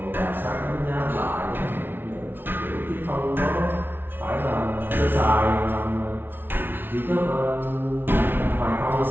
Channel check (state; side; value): late; left; 0.10 ms